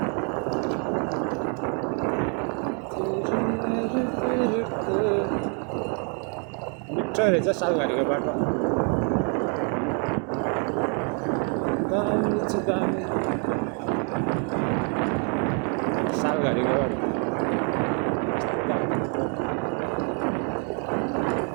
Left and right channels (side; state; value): left; quieter; 39.7 dB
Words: मिठो रहेछ सालघारीको बाटो दामी छ दामी सालघारीको